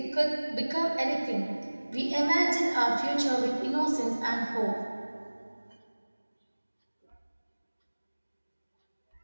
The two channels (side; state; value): both; inverted; correlation -1.00